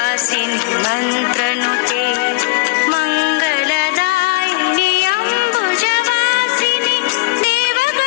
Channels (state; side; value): quieter; right; 23.3 dB